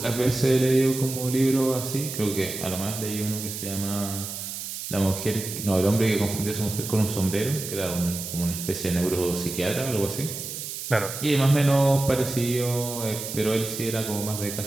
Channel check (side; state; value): right; noise; hiss, 7 dB below the sound